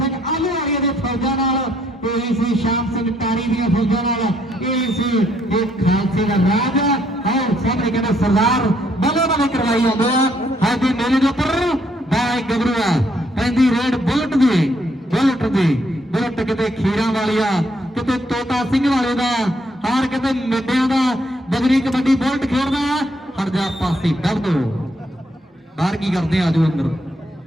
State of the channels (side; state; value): both; normal; correlation 0.71